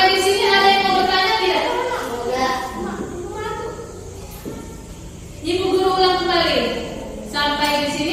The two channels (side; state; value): both; identical; correlation 1.00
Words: di sini ada yang mau bertanya tidak? Ibu guru ulang kembali. Sampai di